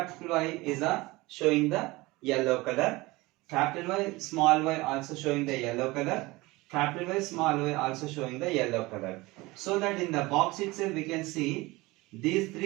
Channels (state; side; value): quieter; left; 21.6 dB